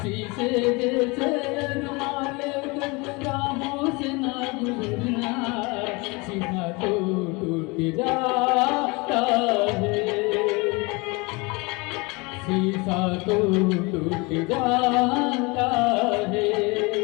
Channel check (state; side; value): quieter; right; 26.8 dB